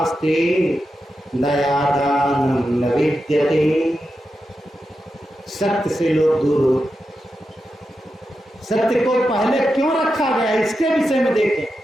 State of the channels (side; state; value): both; normal; correlation 0.89